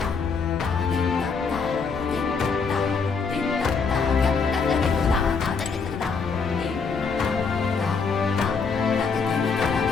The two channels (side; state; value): right; quieter; 5.1 dB